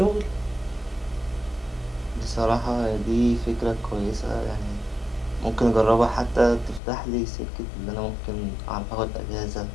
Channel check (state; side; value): drops out; right; at 6.8 s